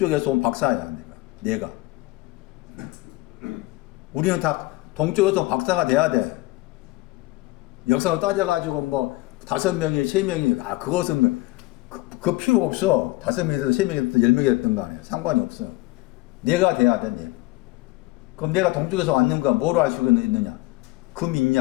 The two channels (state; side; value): quieter; right; 19.9 dB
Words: 온 박사야. 내가. 우리는 다 동쪽에서 온 박사가 돼야 돼. 역사로 따져가지고 뭐 5명이 3명이 그것은 그 필요 없어. 5명이 됐든 3명이 됐든 10명이 됐든 간에 상관이 없어. 내가 돼야 돼. 내가. 그럼 내가 동쪽에서 왔는가? 뭐로 알 수가 있느냐? 금